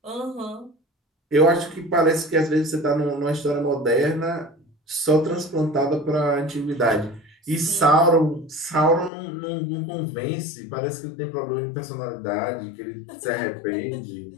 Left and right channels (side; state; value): right; drops out; at 9.1 s